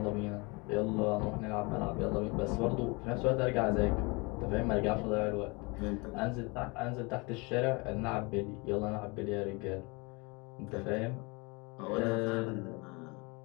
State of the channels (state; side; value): quieter; right; 28.1 dB